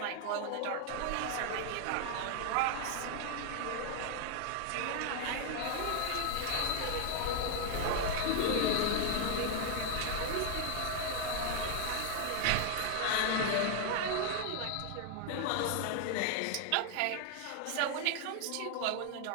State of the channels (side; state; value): both; different; correlation 0.00